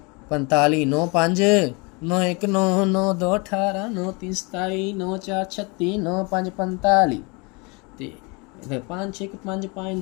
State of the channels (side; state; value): right; quieter; 29.4 dB